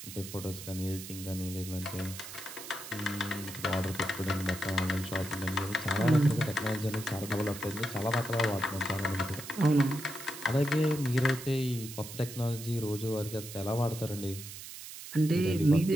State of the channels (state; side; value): noise; right; hiss, 12 dB below the sound